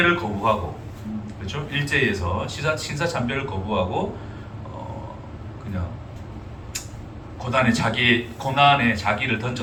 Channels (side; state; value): both; identical; correlation 1.00